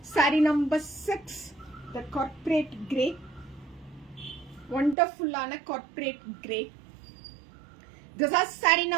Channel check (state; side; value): drops out; left; at 5.0 s